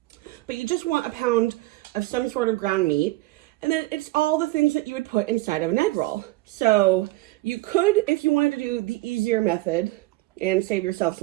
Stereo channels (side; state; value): left; quieter; 19.6 dB